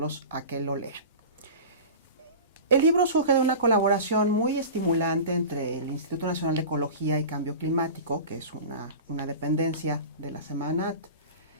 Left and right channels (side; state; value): both; inverted; correlation -0.34